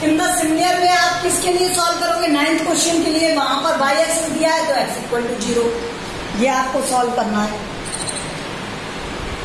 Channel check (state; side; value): identical; both; correlation 1.00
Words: in the similar में आप किसके लिए सॉल्व करोगे, 9th क्वेश्चन के लिए, वहां पर y एक्सिस दिया है तो x इक्वल टू 0, ये आपको सॉल्व करना है।